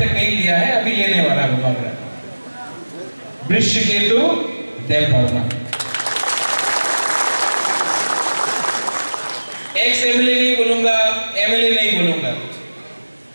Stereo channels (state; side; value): inverted; both; correlation -1.00